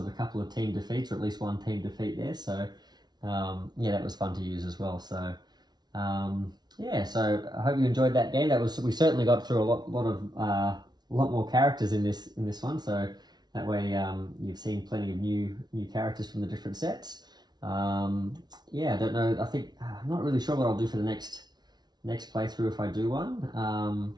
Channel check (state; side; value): late; left; 0.20 ms